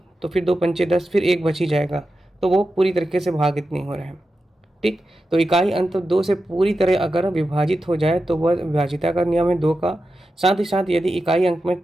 तो फिर 2 पंचे 10, फिर 1 बच ही जाएगा, तो वो पूरी तरीके से भागित नहीं हो रहा है। ठीक, तो इकाई अंत 2 से पूरी तरह अगर विभाजित हो जाए तो वह विभाजिता का नियम है 2 का। साथ ही साथ यदि इकाई अंक में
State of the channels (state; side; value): normal; both; correlation 0.91